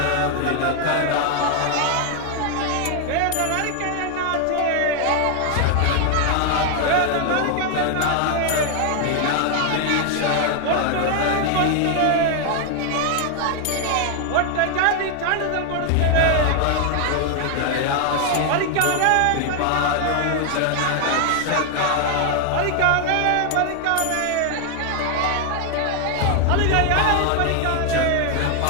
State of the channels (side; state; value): both; different; correlation 0.00